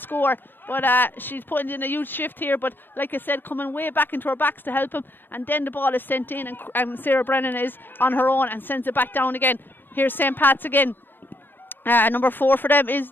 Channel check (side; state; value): right; late; 0.096 ms